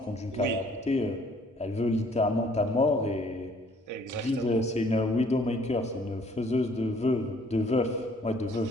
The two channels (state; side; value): normal; both; correlation 0.60